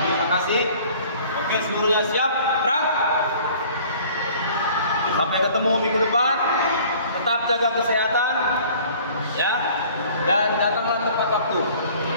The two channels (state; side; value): inverted; both; correlation -0.51